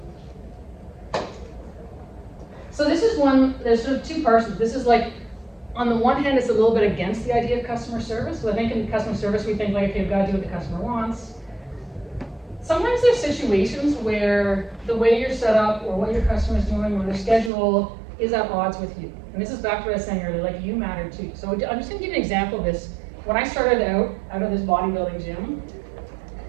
on. So this is one, there's sort of two parts. This is like, on the one hand, it's a little bit against the idea of customer service. So I think in customer service, we think like, okay, we've got to do what the customer wants. Sometimes there's situations where the way you're set up or what your customer's doing or their schedule is at odds with you. And this is back to what I was saying earlier, like you matter too. So I'm just gonna give you an example of this. When I started out of this bodybuilding gym,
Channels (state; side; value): drops out; left; at 17.5 s